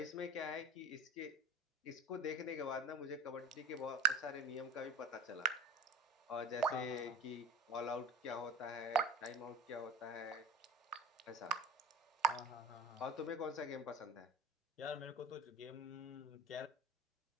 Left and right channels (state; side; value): normal; both; correlation 0.35